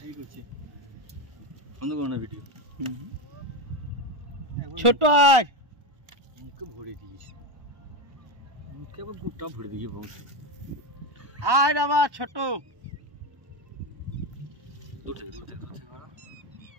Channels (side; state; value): left; late; 1.4 ms